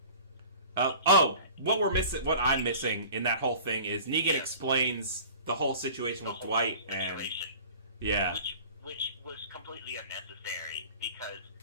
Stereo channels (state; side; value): inverted; both; correlation -0.42